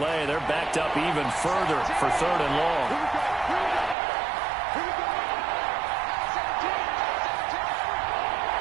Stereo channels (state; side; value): drops out; left; at 4.0 s